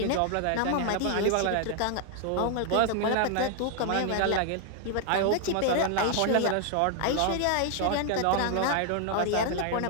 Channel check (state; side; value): different; both; correlation 0.00